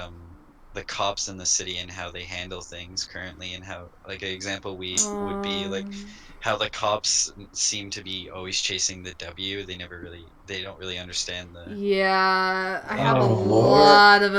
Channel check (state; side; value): identical; both; correlation 1.00